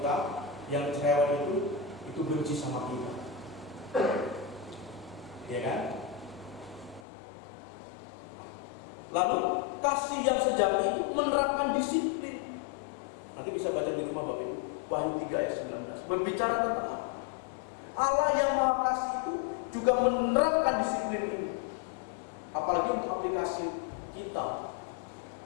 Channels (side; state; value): right; drops out; at 7.0 s